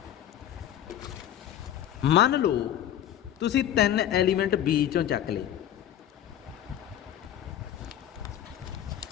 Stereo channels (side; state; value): right; quieter; 11.1 dB